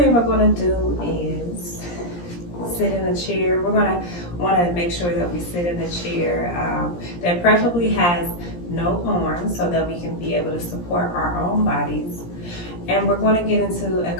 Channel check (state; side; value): late; right; 17 ms